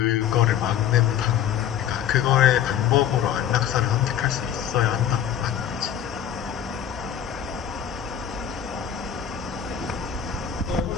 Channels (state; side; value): quieter; right; 9.5 dB